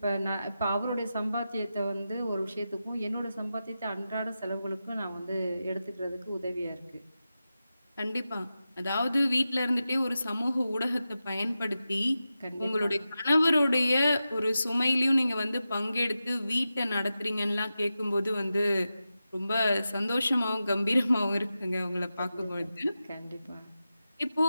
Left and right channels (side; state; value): both; inverted; correlation -0.92